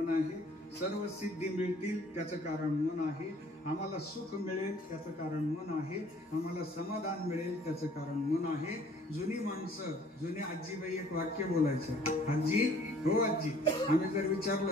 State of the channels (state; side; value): normal; both; correlation 0.56